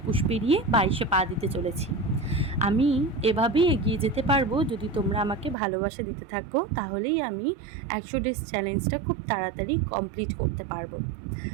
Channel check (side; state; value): left; drops out; at 5.6 s